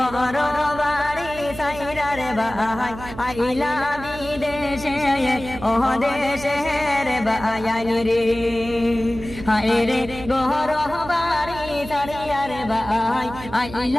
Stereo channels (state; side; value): noise; right; hum, 13 dB below the sound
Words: বাড়ি সাইরার ভাই আইলা বিদেশে ও দেশের বায়ানি রে। হায়রে গর বাড়ি সাইরার ভাই